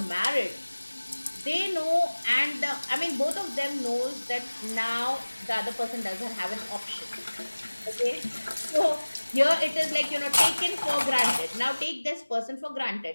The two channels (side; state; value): both; inverted; correlation -1.00